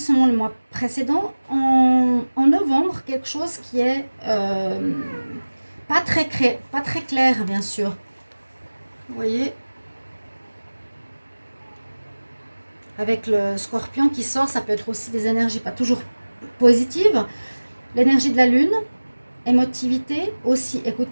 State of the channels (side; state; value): both; inverted; correlation -1.00